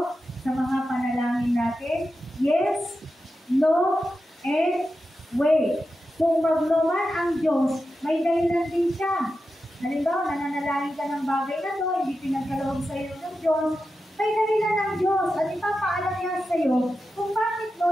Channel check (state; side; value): normal; both; correlation 0.90